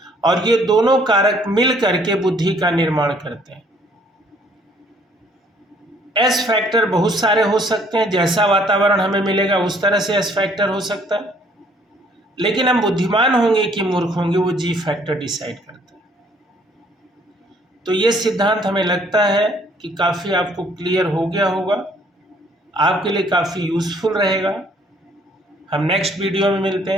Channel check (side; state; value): both; normal; correlation 0.61